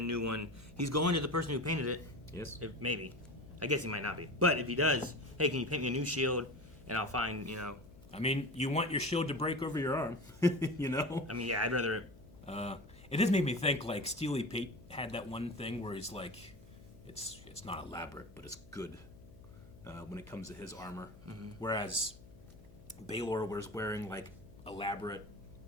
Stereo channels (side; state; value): left; noise; hum, 22 dB below the sound